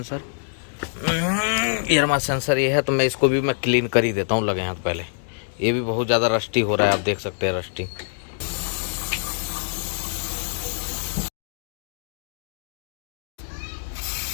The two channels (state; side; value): silent; right; 62 dB below the other